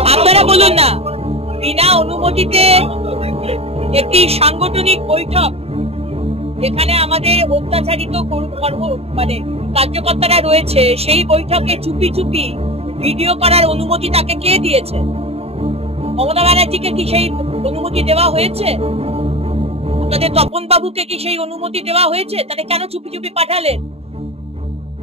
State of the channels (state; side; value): late; left; 0.29 ms